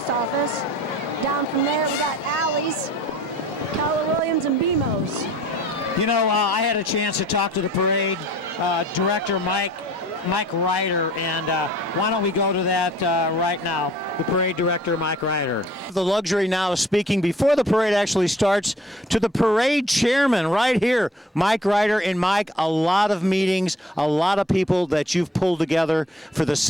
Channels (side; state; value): both; normal; correlation 0.53